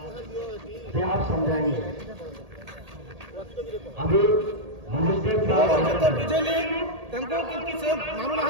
से आप समझाएंगे अभी ଯେତେ ବୁଝେଇଲି ତାଙ୍କୁ କିନ୍ତୁ ସେ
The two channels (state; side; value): late; left; 1.8 ms